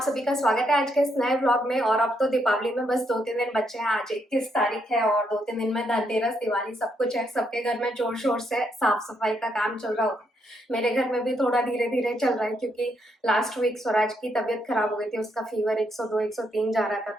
सभी का स्वागत है आज के इस नए व्लॉग में। और अब तो दीपावली में बस 2-3 दिन बचे हैं। आज 21 तारीख है और 2-3 दिन में धनतेरस, दिवाली सब कुछ है। सबके घर में जोर शोर से साफ सफाई का काम चल रहा होगा। मेरे घर में भी थोड़ा धीरे धीरे चल रहा है क्योंकि लास्ट वीक स्वराज की तबीयत खराब हो गई थी। उसका फीवर 102 103 जा रहा था,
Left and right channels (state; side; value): normal; both; correlation 0.77